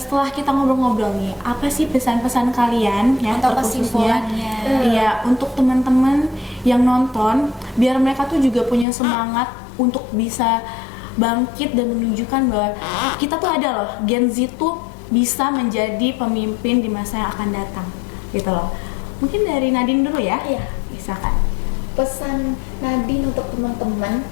kita ngobrol-ngobrol nih, apa sih pesan-pesan kalian ya Atau terkhususnya? kesimpulannya? Iya, untuk teman-teman yang nonton, biar mereka tuh juga punya semangat untuk bisa bangkit dan menunjukkan bahwa kita tuh ada loh, Gen Z tuh bisa menjadi pemimpin di masa yang akan datang, gitu loh. Mungkin dari Nadine dulu ya. Iya. Misalkan. Pesan Nadine untuk teman-teman,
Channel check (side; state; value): right; drops out; at 8.8 s